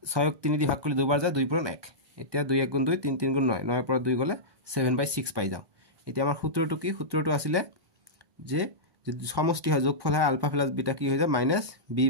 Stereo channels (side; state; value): left; late; 1.1 ms